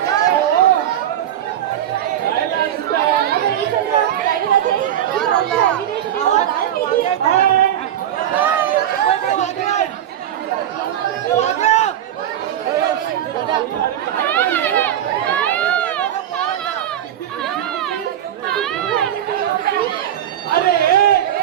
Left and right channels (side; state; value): left; quieter; 10.9 dB